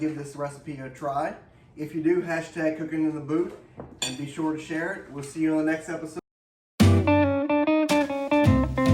this recipe a try. If you do, hashtag cooking in the booth and be sure to share it. We'll see you on the next episode.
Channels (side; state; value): both; identical; correlation 1.00